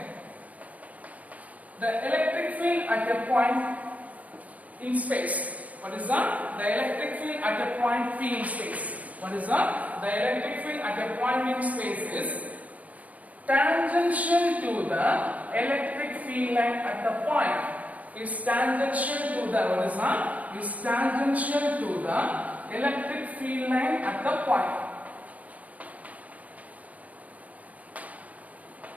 The electric field at a point in space. What is that? The electric field at a point P in space. What is that? The electric field at a point in space is tangential to the electric field line at the point. Is tangential to the, what is that? Is tangential to the electric field line at the point.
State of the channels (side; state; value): left; late; 0.072 ms